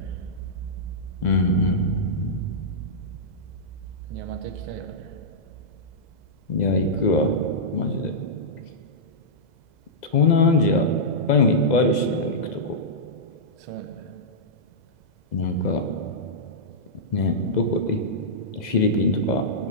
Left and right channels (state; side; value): late; right; 2.0 ms